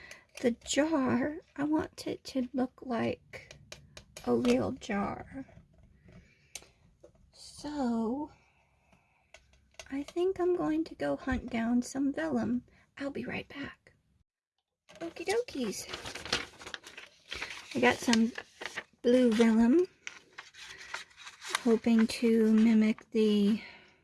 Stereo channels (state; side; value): identical; both; correlation 1.00